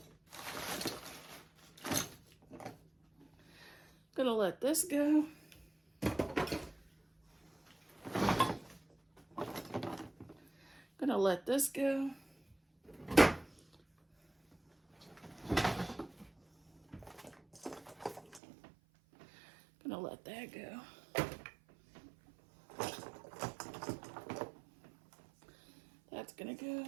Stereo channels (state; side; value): drops out; left; at 18.4 s